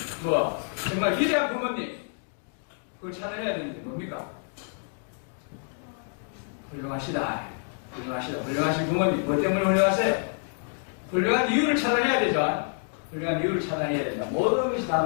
정말 위대한 부모님, 그걸 찾아내야 되는 게 뭡니까? 훌륭하시다. 훌륭하신 부모님. 뭐 때문에 훌륭하세요? 훌륭한 이유를 찾아내야 되죠. 훌륭한 이유를 찾아내야 된다. 모든 것이 다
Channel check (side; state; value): right; silent; 60 dB below the other